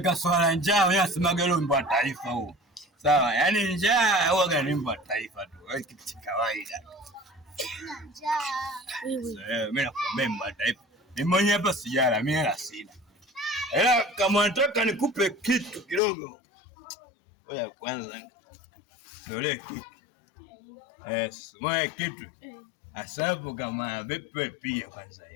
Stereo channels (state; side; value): drops out; right; at 16.0 s